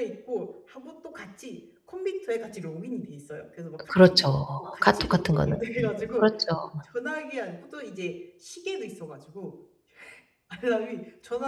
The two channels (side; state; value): both; identical; correlation 1.00